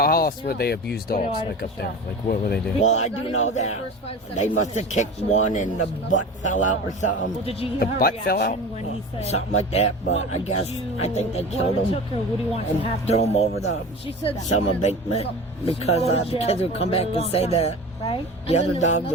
else would they abuse dogs like up there? Like what were they doing? Well, I do know that they must have kicked one and the butt fell out or Well, something. did you hear The her butt fell reaction out? when he said, Something like that, but I guess, I think they killed what him took her? What do you want to and happen? threw him over the She said some embankment because the kids would come back and say that Right? the other dogs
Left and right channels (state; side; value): normal; both; correlation 0.34